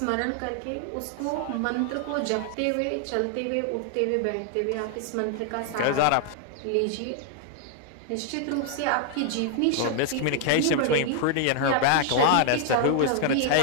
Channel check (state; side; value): different; both; correlation 0.00